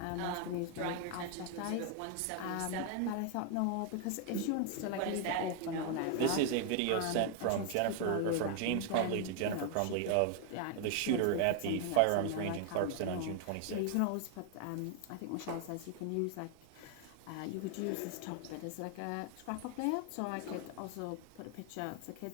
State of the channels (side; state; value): both; different; correlation 0.00